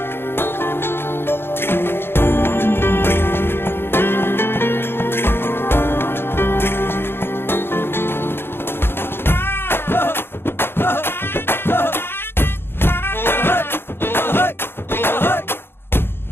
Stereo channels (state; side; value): late; right; 0.11 ms